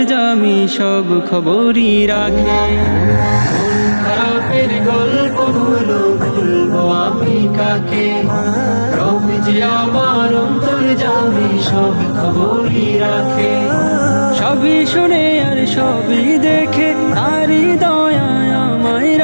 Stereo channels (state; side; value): inverted; both; correlation -1.00